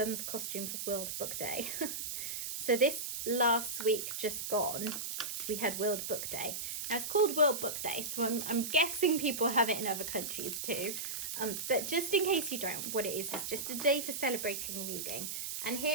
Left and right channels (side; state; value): right; noise; hiss, 4 dB below the sound